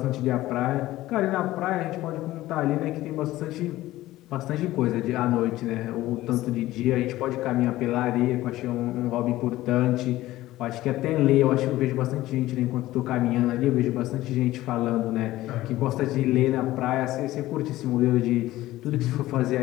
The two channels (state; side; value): quieter; right; 16.2 dB